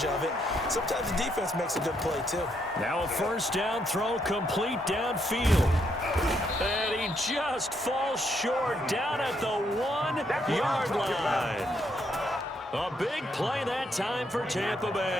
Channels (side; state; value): both; normal; correlation 0.75